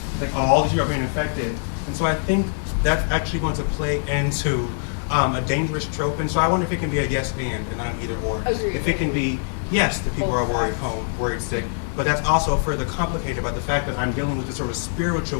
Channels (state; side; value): silent; right; digital silence